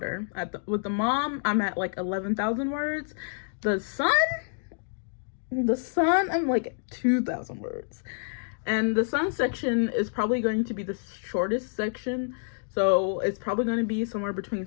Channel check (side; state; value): right; silent; digital silence